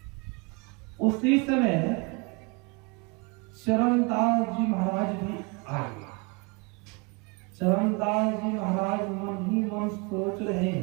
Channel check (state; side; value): quieter; left; 29.6 dB